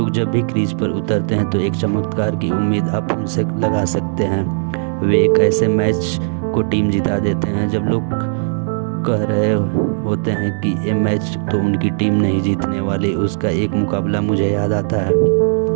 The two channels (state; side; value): silent; left; digital silence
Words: जब भी क्रीज पर उतरते हैं तो एक चमत्कार की उम्मीद आप उनसे लगा सकते हैं। वे एक ऐसे मैच को टीम जिता देते हैं जब लोग कह रहे होते हैं कि ये मैच तो उनकी टीम नहीं जीतने वाली। उसका एक मुकाबला मुझे याद आता है